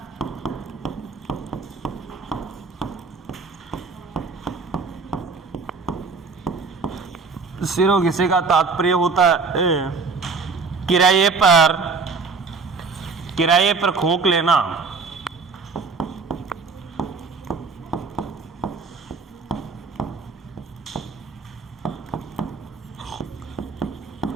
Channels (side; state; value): left; quieter; 4.6 dB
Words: सिरोगेसी का तात्पर्य होता है किराए पर खोक लेना।